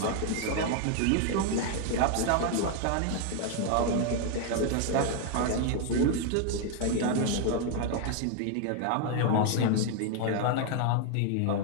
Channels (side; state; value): both; different; correlation 0.00